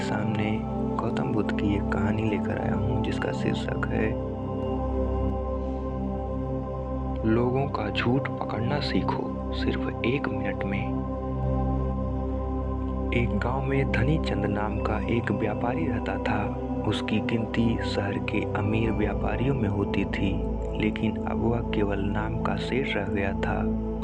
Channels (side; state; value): both; identical; correlation 1.00